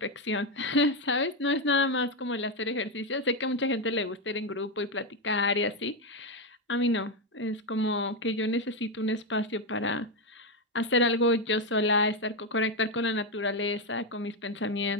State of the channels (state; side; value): normal; both; correlation 0.07